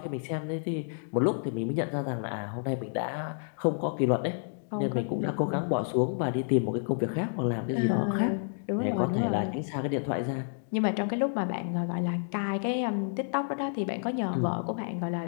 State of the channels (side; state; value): right; silent; digital silence